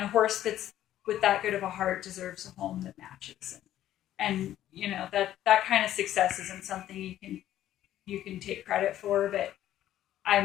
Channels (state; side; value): quieter; right; 12.6 dB